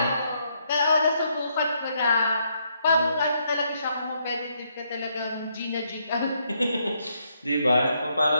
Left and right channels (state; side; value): inverted; both; correlation -0.75